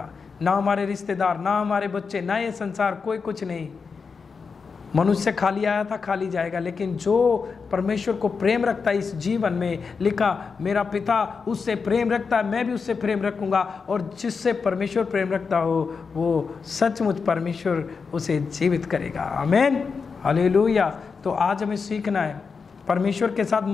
ना हमारे रिश्तेदार, ना हमारे बच्चे, ना ये संसार, कोई कुछ नहीं। मनुष्य खाली आया था, खाली जाएगा, लेकिन जो परमेश्वर को प्रेम रखता है इस जीवन में, लिखा मेरा पिता उससे प्रेम रखता है, मैं भी उससे प्रेम रखूंगा। और जिससे परमेश्वर प्रेम रखता हो वो सचमुच परमेश्वर उसे जीवित करेगा। आमीन। हालेलुया। तो आज हमें सीखना है, परमेश्वर के साथ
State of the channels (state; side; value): quieter; right; 5.2 dB